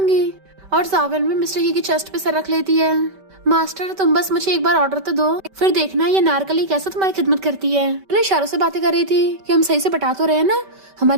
और जावन भी मिस्टर ही की चेस्ट पे सर रख लेती है। मास्टर तुम बस मुझे एक बार ऑर्डर तो दो, फिर देखना ये नारकली कैसे तुम्हारी खिदमत करती है। मैंने इशारों से बातें कर रही थी कि हम सही से पटा तो रहे हैं ना,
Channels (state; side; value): late; left; 5.2 ms